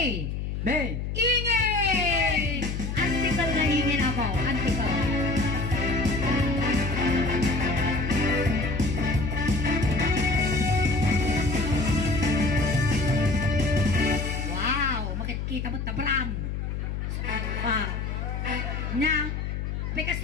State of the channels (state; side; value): noise; left; hum, 4 dB below the sound